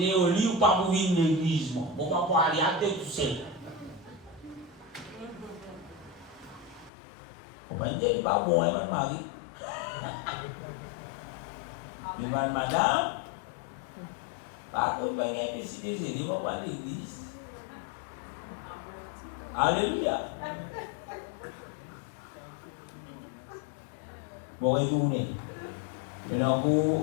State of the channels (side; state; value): right; drops out; at 6.9 s